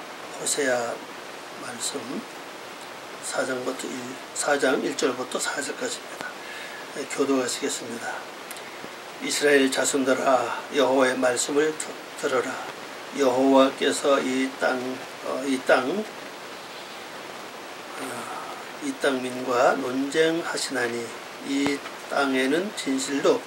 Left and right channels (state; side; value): identical; both; correlation 1.00